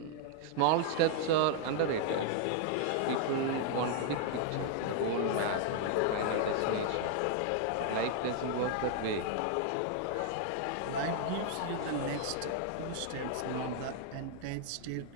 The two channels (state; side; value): different; both; correlation -0.01